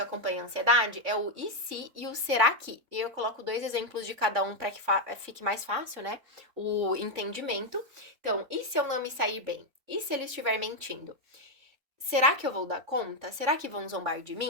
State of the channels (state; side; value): late; left; 3.6 ms